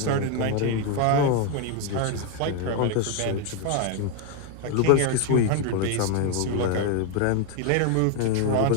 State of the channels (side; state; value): both; different; correlation 0.01